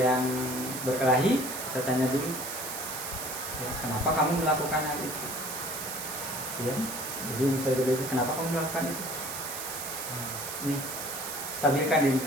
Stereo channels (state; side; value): noise; right; hiss, 6 dB below the sound